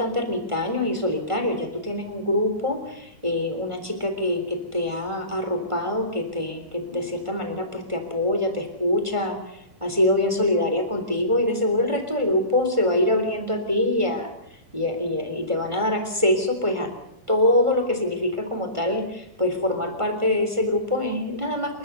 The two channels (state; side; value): late; left; 1.5 ms